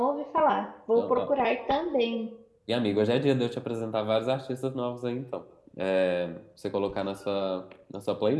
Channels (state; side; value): identical; both; correlation 1.00